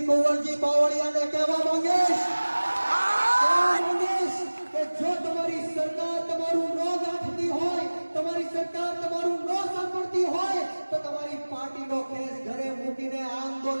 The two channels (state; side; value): inverted; both; correlation -1.00